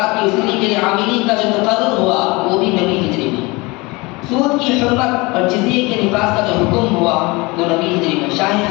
کی وصولی کے لیے عاملین کا جو تقرر ہوا وہ بھی نویں ہجری میں، سود کی حرمت اور جزیے کے نفاذ کا جو حکم ہوا وہ نویں ہجری میں، شاہ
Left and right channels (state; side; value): quieter; right; 24.6 dB